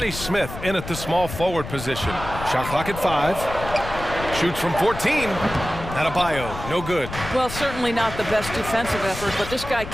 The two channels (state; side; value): noise; left; rumble, 10 dB below the sound